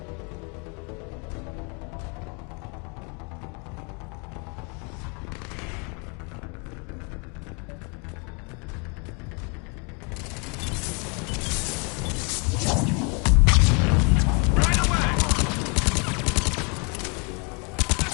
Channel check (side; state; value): right; quieter; 34.0 dB